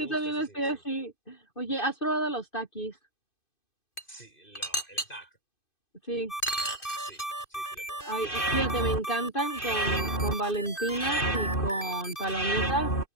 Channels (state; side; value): late; right; 2.5 ms